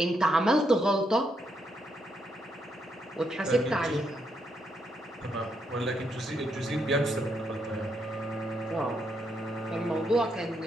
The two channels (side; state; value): both; normal; correlation 0.78